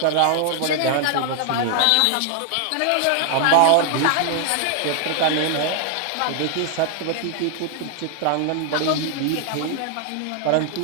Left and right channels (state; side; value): different; both; correlation 0.00